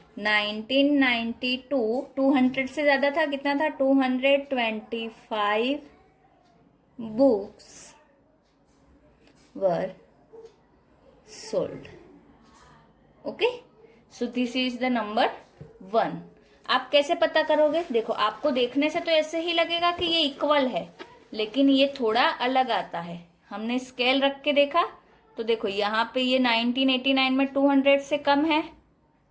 1992 200 से ज्यादा था. कितना था? 225 books were sold. Okay, so this is the number 1. आप कैसे पता करोगे? देखो आपको देखने से तो ऐसे ही लगेगा कि ये इक्वल है, लेकिन ये थोड़ा अलग आता है. हमने स्केल रख के देखा तो देखो यहाँ पे ये 1989 में 200 से कम है,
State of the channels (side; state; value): both; identical; correlation 1.00